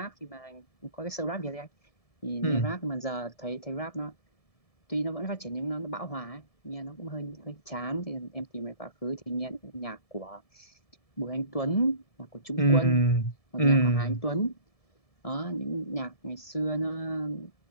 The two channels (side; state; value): right; late; 1.7 ms